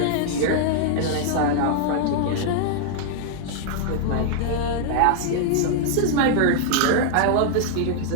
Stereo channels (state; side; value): different; both; correlation -0.01